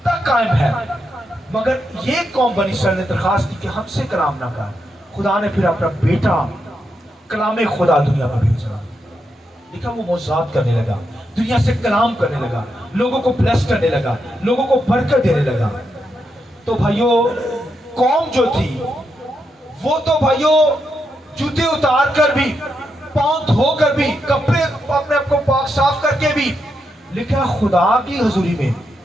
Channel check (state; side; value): normal; both; correlation 0.83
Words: تک قائم ہے. مگر یہ قوم بنی اسرائیل نے درخواست کی کہ ہم سے کلام نہ کر. خدا نے پھر اپنا بیٹا کلام خدا دنیا میں بھیجا. دیکھا وہ معجزات کرنے لگا، دنیا سے کلام کرنے لگا، لوگوں کو بلیس کرنے لگا، لوگوں کو برکت دینے لگا. تو بھائیوں قوم جو تھی وہ تو بھائیوں جوتے اتار کر بھی، پاؤں دھو کر بھی، کپڑے اپنے آپ کو پاک صاف کر کے بھی لکھا خدا کی حضوری میں